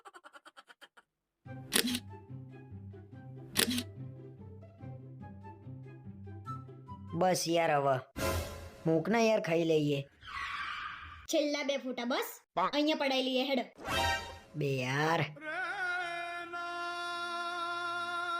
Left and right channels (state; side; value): identical; both; correlation 1.00